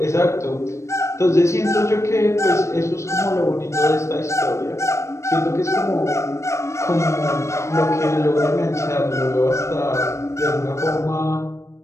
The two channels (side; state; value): right; late; 0.14 ms